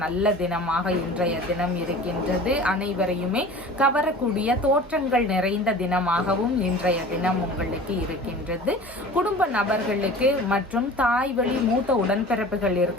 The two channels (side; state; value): both; normal; correlation 0.40